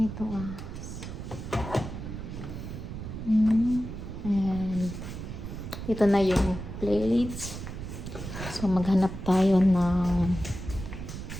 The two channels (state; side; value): noise; right; rumble, 8 dB below the sound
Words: and ito na yung plates. So maghanap tayo ng